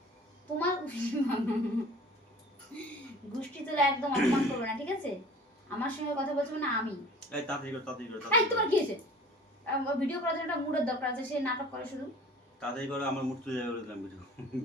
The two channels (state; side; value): normal; both; correlation 0.45